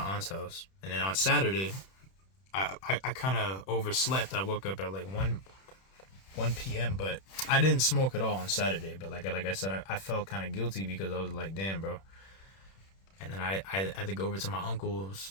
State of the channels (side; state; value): right; late; 31 ms